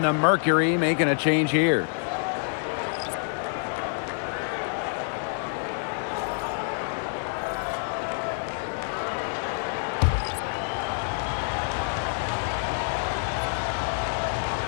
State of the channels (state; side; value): silent; right; digital silence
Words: the Mercury making a change here.